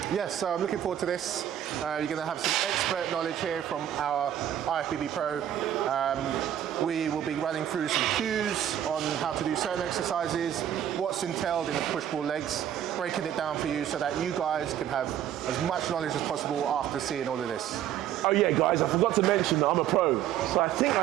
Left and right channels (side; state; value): left; quieter; 10.7 dB